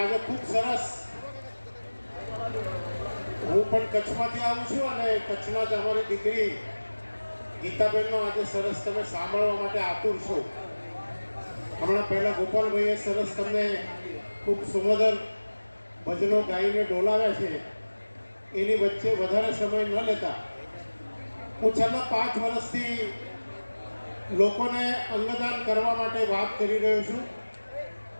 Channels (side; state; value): both; inverted; correlation -1.00